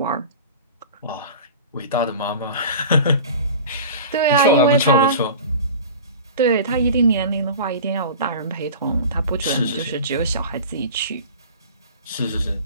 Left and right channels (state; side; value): inverted; both; correlation -0.37